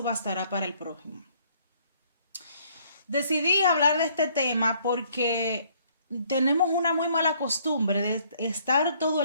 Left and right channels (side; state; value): both; inverted; correlation -0.63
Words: bastará para el prójimo. Decidí hablar de este tema porque tenemos una muy mala costumbre de estar todo